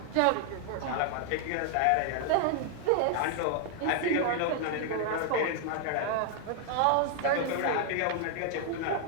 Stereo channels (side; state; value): both; different; correlation 0.00